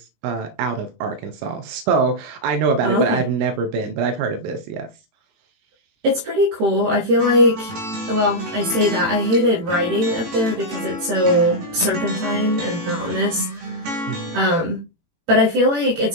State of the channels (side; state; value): left; late; 18 ms